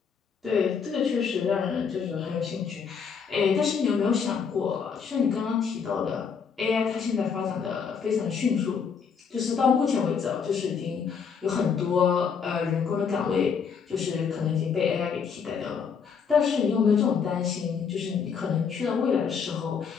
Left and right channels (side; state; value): right; quieter; 6.4 dB